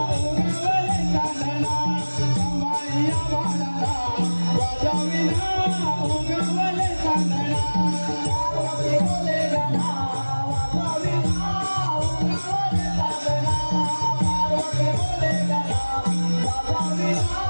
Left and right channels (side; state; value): both; inverted; correlation -1.00